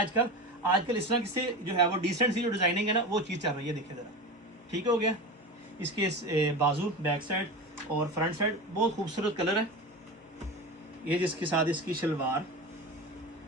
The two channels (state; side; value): normal; both; correlation 0.27